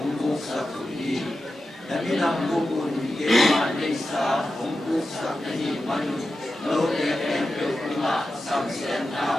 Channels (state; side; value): normal; both; correlation 0.91